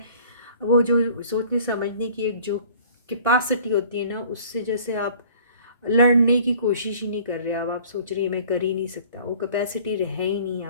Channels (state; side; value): inverted; both; correlation -0.51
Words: वो जो सोचने समझने की एक जो कैपेसिटी होती है ना, उससे जैसे आप लड़ने की कोशिश ही नहीं कर रहे। अब आप सोच रही है मैं कर ही नहीं सकता, वो कैपेसिटी रह ही नहीं